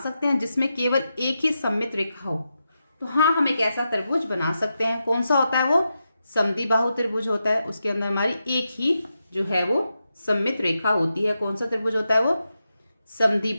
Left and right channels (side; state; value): both; inverted; correlation -0.88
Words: सकते हैं जिसमें केवल एक ही सममित रेखा हो। तो हाँ, हम एक ऐसा त्रिभुज बना सकते हैं। कौन सा होता है वो, समद्विबाहु त्रिभुज होता है। उसके अंदर हमारी एक ही जो है वो सममित रेखा होती है। कौन सा त्रिभुज होता है वो,